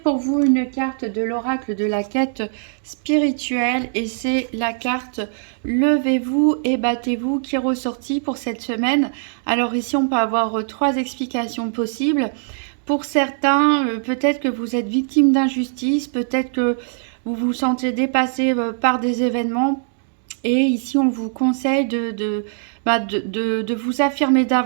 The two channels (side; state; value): left; silent; digital silence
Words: vous une carte de l'oracle de la quête spirituelle et c'est la carte Levez-vous et battez-vous qui est ressortie pour cette semaine. Alors ici on peut avoir trois explications possibles. Pour certains, peut-être que vous êtes victime d'injustice, peut-être que vous vous sentez dépassé par des événements. Et ici, on vous conseille de vous affirmer